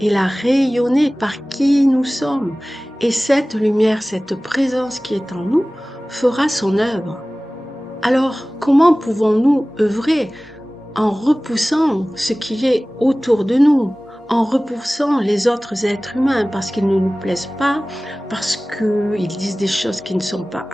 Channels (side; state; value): both; normal; correlation 0.98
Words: et la rayonner par qui nous sommes. Et cette lumière, cette présence qui est en nous, fera son œuvre. Alors, comment pouvons-nous œuvrer en repoussant ce qui est autour de nous, en repoussant les autres êtres humains parce qu'ils ne nous plaisent pas, parce qu'ils disent des choses qui ne sont pas